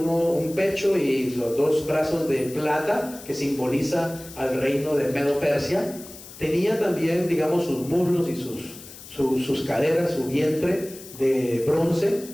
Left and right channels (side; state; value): left; noise; hiss, 16 dB below the sound